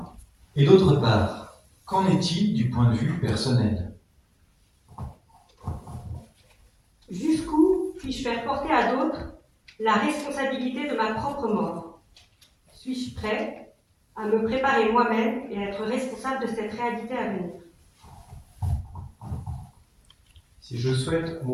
Et d'autre part, qu'en est-il du point de vue personnel? Jusqu'où puis-je faire porter à d'autres la responsabilité de ma propre mort? Suis-je prêt à me préparer moi-même et à être responsable de cette réalité à venir? Si je souhaite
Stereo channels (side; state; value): both; identical; correlation 1.00